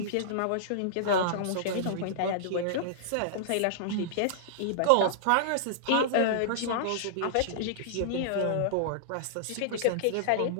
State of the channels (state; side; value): different; both; correlation -0.02